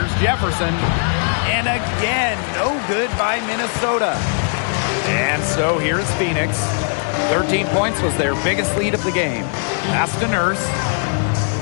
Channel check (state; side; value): silent; right; 62 dB below the other